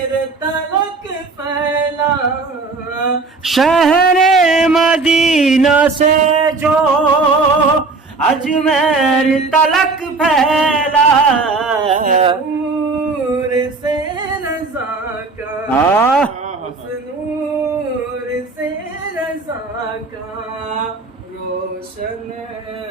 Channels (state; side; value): quieter; left; 3.9 dB